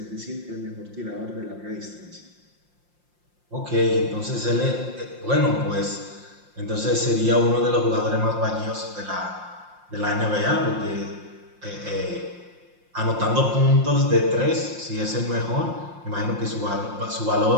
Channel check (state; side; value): late; left; 5.7 ms